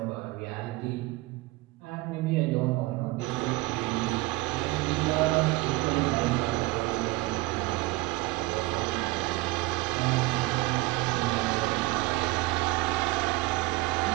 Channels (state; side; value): quieter; left; 20.8 dB